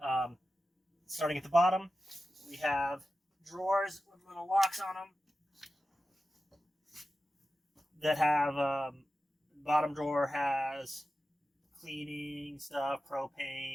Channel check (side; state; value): both; normal; correlation 0.93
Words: Starting at the bottom, we have drawers with little locks on them that have bottom drawer has cleaning stuff,